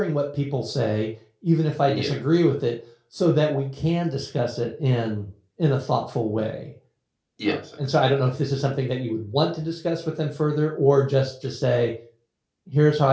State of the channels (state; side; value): identical; both; correlation 1.00